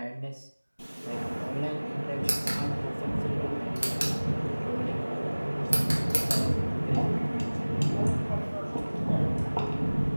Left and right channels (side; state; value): both; inverted; correlation -1.00